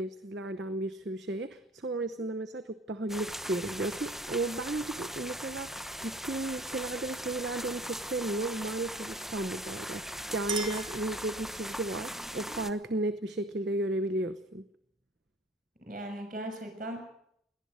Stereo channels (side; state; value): both; normal; correlation 0.47